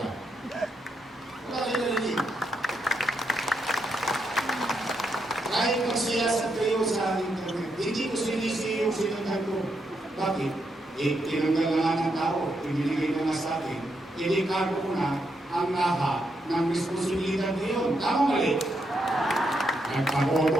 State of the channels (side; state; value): both; normal; correlation 0.81